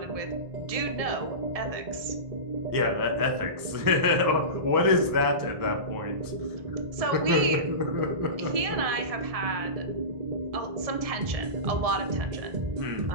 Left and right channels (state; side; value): late; left; 1.7 ms